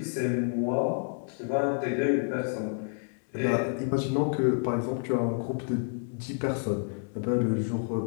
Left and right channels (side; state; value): right; silent; 58 dB below the other